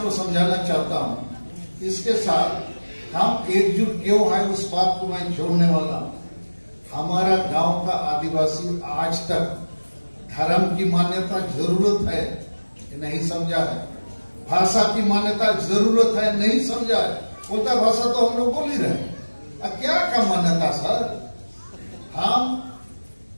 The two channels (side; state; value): both; inverted; correlation -1.00